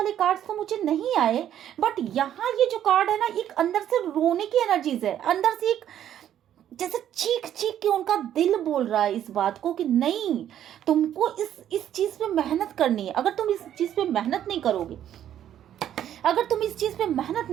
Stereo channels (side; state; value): left; quieter; 10.7 dB